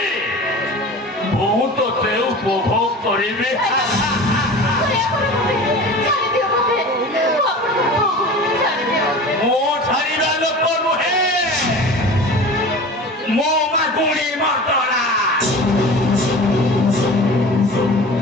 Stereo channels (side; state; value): both; normal; correlation 0.36